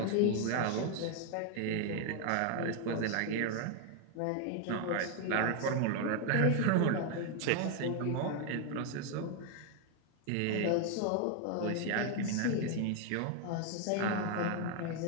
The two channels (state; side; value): different; both; correlation 0.01